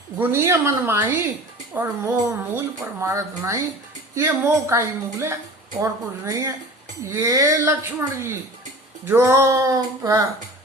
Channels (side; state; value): both; normal; correlation 0.39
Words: गुनिय मन माही, और मोह मूल पर मारत नहीं। ये मोह का ही मूल है और कुछ नहीं है। ये लक्ष्मण जी जो